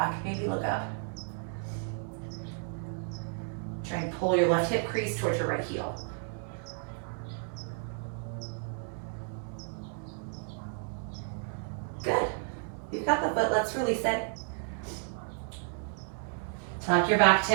Maybe look up. Try and pull your left hip crease towards your right heel. Good. You've got the foot, let's release it. Tuck your back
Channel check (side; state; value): left; silent; 56 dB below the other